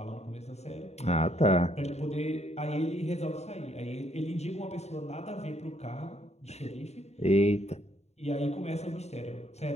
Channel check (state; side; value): late; right; 0.31 ms